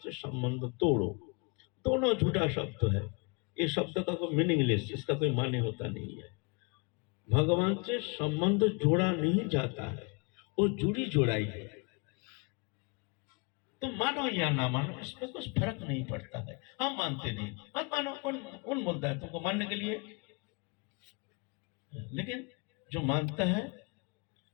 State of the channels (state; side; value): quieter; right; 32.0 dB